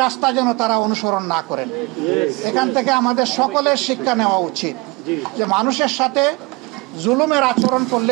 রাস্তা যেন তারা অনুসরণ না করেন। এখান থেকে আমাদের সকলের শিক্ষা নেওয়া উচিত যে মানুষের সাথে জুলুমের আচরণ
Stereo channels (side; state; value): left; quieter; 25.6 dB